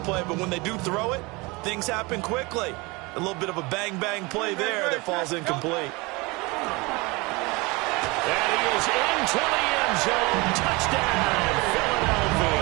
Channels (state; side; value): quieter; left; 25.1 dB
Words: play, but when they do throw it, things happen quickly. A little bit of a bang-bang play there that falls incomplete. And he is into the end zone. Touchdown,